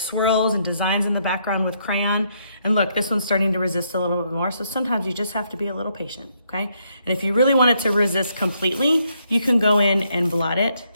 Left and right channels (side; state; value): both; inverted; correlation -0.74